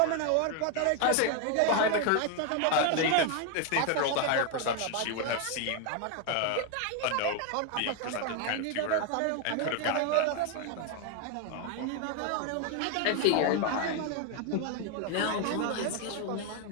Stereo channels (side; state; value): both; different; correlation 0.01